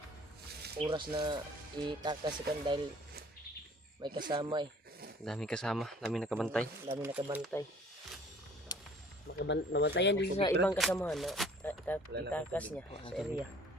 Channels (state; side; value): normal; both; correlation 0.53